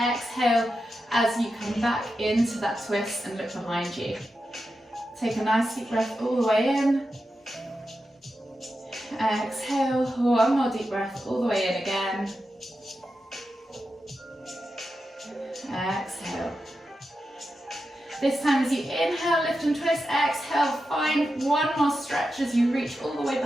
as you come back into that twist and look behind you. Take a nice deep breath all the way in. Exhale, one more deep breath all the way in again. Exhale. This time as you inhale, lift and twist, exhale, find one more stretch as you reach all the way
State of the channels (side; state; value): both; normal; correlation 0.89